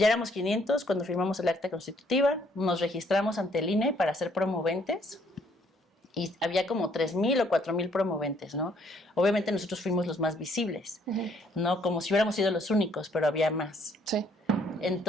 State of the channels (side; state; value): both; normal; correlation 0.66